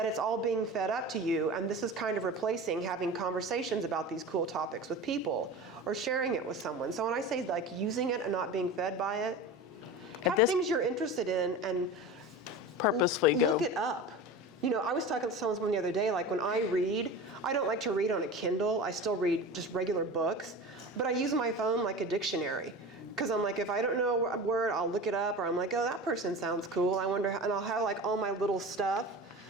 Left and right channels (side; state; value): both; normal; correlation 0.32